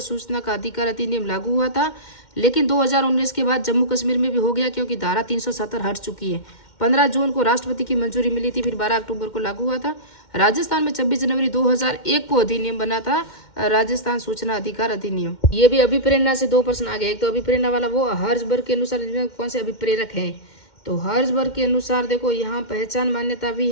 सूचना का अधिकार अधिनियम लागू हुआ था। लेकिन 2019 के बाद जम्मू कश्मीर में भी हो गया, क्योंकि धारा 370 हट चुकी है। 15 जून को राष्ट्रपति की मंजूरी मिली थी, फिर 12 अक्टूबर को लागू हुआ था। राजस्थान में 26 जनवरी 2001 को अधिनियम बना था, राजस्थान सूचना अधिकार अधिनियम। ये भी अभिप्रेरणा से 2 प्रश्न आ गए। एक तो अभिप्रेरणा वाला वो हर्जबर्ग के अनुसार कौन से अभिप्रेरक हैं, तो हर्जबर्ग के अनुसार देखो यहाँ पहचान मान्यता भी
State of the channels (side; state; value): right; late; 2.1 ms